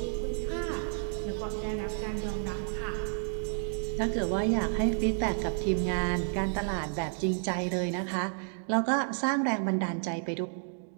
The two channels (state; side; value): silent; left; 57 dB below the other